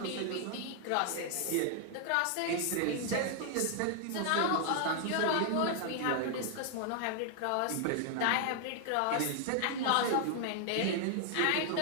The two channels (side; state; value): both; different; correlation 0.00